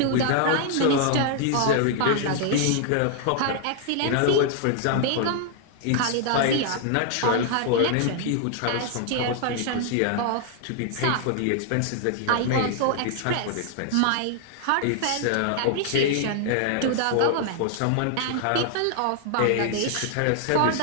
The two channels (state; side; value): different; both; correlation 0.00